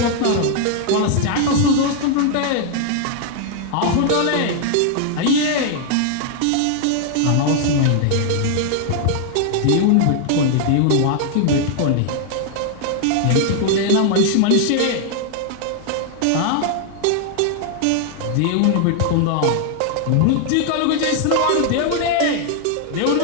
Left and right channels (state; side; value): different; both; correlation 0.00